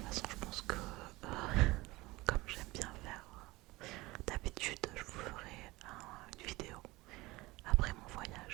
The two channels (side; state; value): left; quieter; 20.7 dB